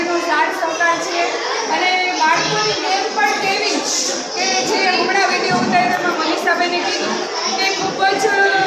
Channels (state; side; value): identical; both; correlation 1.00